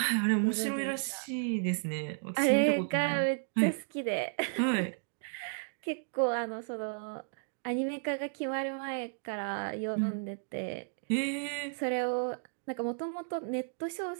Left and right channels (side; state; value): left; silent; digital silence